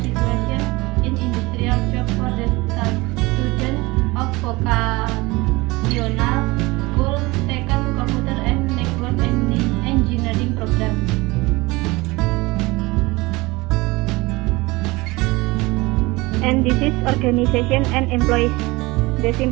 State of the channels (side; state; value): left; quieter; 22.5 dB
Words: in industrial job for the students of vocational school taken computer and network engineering program. And this is organization and employees. The